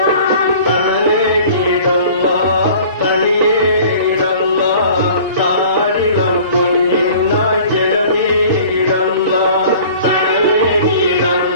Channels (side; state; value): both; inverted; correlation -0.47